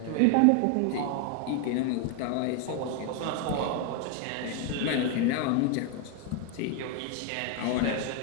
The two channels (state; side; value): different; both; correlation 0.01